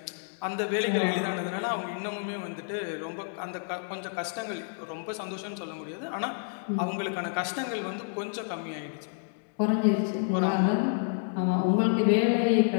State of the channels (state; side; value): silent; right; digital silence